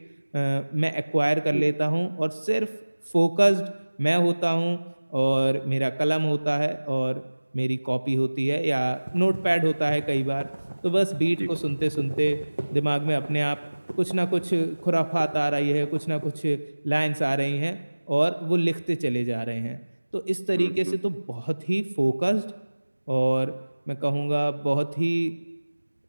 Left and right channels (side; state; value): both; inverted; correlation -1.00